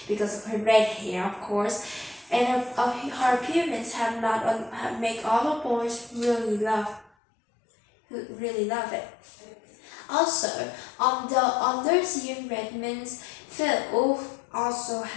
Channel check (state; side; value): drops out; right; at 7.1 s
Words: because of her red hair, of course, and her appearance have make all the boys really love it. Also, on those year Redmonds, Phil also